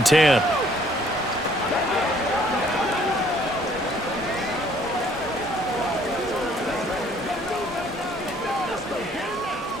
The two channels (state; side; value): normal; both; correlation 0.61